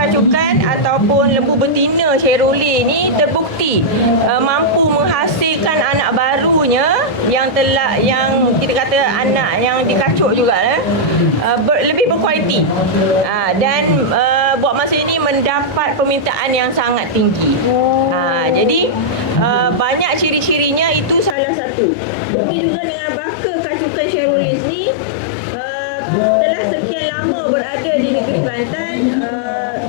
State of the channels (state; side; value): drops out; right; at 21.4 s